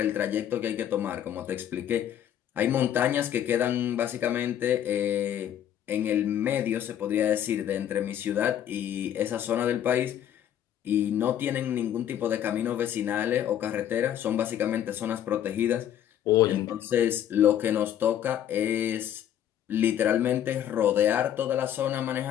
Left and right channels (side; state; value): right; quieter; 10.4 dB